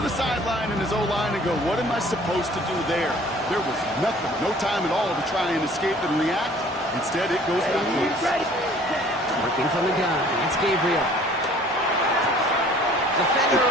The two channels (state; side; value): normal; both; correlation 0.53